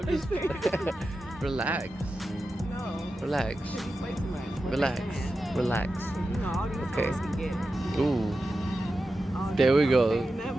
just playing. Relax. No. Relax. You play too much. Relax. Relax. All these Okay. girls can get it. Ooh. All There we these go. saying that,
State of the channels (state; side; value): normal; both; correlation 0.91